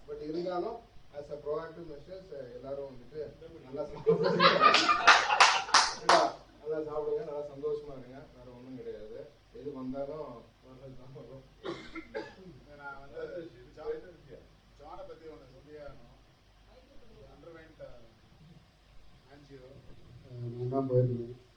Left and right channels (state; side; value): identical; both; correlation 1.00